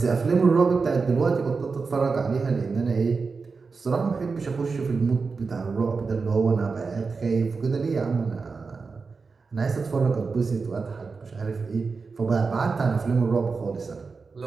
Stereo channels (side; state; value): left; quieter; 4.6 dB